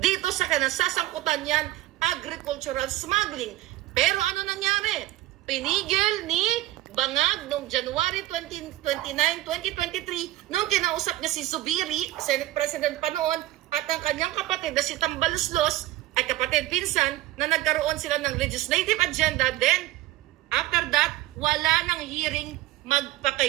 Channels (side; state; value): left; quieter; 16.1 dB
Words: Dito sa kinasasangkutan yan, agricultural smuggling. Pero ano nangyari? Pinigil ni Bangag noong January 29, 2023 nung kinausap niya si Zubiri, Senate President pa noon, at ang kanyang kapatid na si Tambaloslos ay kapatid pinsan na nagkaroon sila ng legislative agenda. Then, after that, wala nang hearing